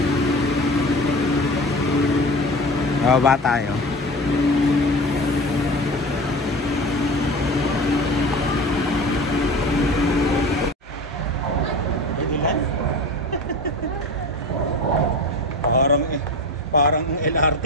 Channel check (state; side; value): normal; both; correlation 0.34